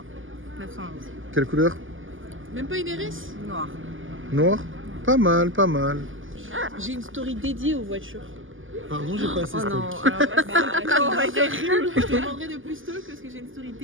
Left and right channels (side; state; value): left; late; 0.58 ms